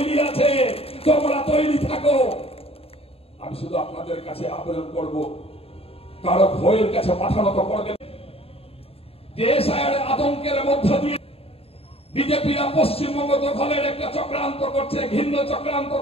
আছে, তোমরা তৈরি থাকো। আমি শুধু আপনাদের কাছে আবেদন করব, কারো ভয়ের কাছে মাথা নত করবেন। দেশ আতঙ্কের মধ্য দিয়ে বিজেপিরা পশ্চিমবঙ্গ দখলের একটা চক্রান্ত করছে, ঘৃণ্য চক্রান্ত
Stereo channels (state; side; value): late; right; 0.28 ms